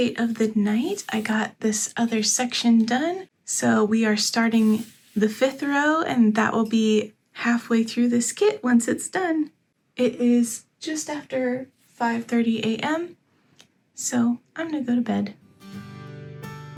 of the night. I got this other section done. So we are starting the 5th row, and that will be halfway through this kit once it's done. It is just after 5:30 a.m., so I'm gonna go to bed.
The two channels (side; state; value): both; identical; correlation 1.00